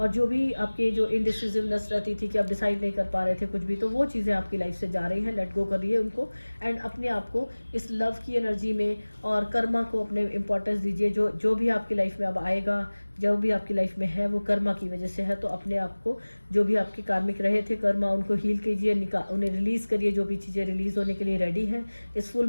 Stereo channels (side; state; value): both; inverted; correlation -1.00